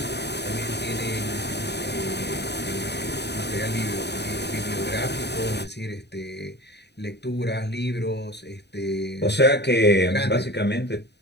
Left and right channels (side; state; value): right; late; 0.49 ms